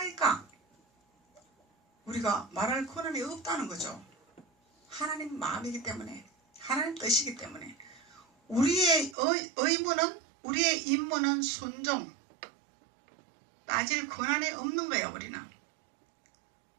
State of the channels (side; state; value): left; drops out; at 9.2 s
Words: 우리가 말할 권한이 없다는 거죠. 하나님 마음이기 때문에 하나님 뜻이기 때문에 우리의 의무는 우리의 임무는 순종 따질 권한이 없는 거예요. 우리는